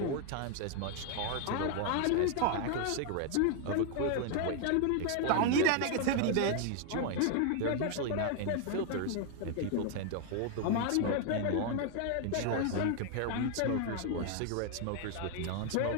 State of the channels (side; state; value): both; different; correlation 0.00